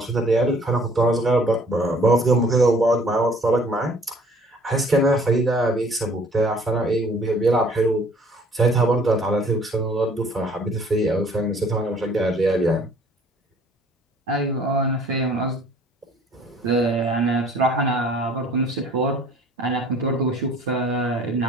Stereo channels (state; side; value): normal; both; correlation 0.55